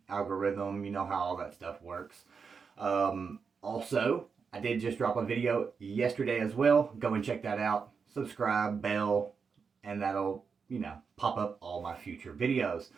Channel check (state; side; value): quieter; left; 5.7 dB